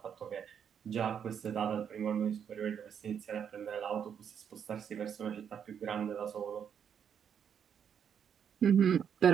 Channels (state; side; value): quieter; left; 8.0 dB